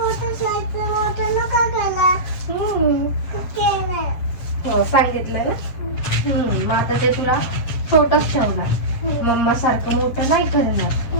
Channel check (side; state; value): right; late; 8.5 ms